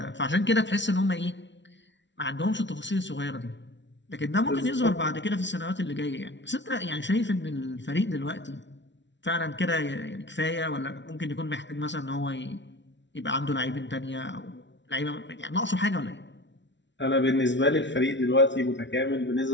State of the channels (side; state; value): right; late; 0.52 ms